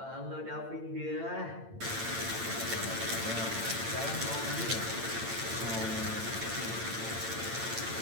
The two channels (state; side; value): late; left; 8.8 ms